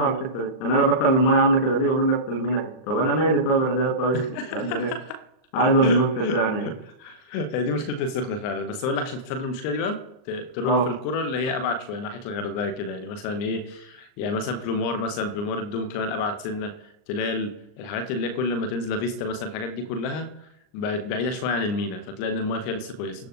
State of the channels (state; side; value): late; right; 39 ms